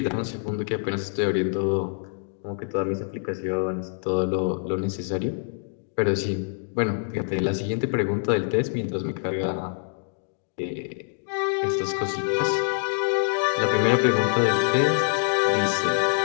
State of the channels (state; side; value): silent; right; digital silence